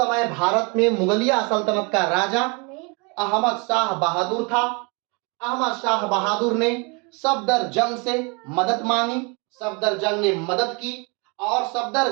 भारत में मुगलिया सल्तनत का राजा अहमद शाह बहादुर था। अहमद शाह बहादुर ने सफदरजंग से मदद मांगी, सफदरजंग ने मदद की, और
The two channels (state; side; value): quieter; left; 31.4 dB